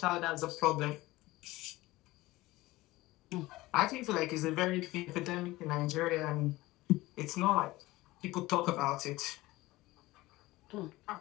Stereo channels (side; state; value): right; quieter; 18.9 dB